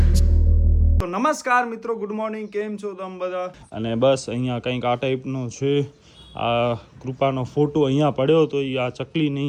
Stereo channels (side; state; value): both; identical; correlation 1.00